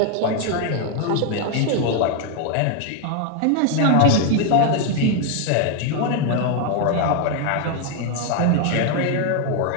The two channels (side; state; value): both; different; correlation 0.01